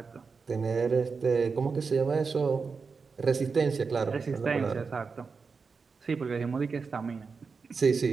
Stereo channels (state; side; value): quieter; left; 5.0 dB